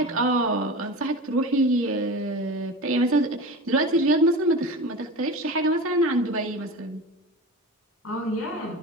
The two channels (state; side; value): normal; both; correlation 0.30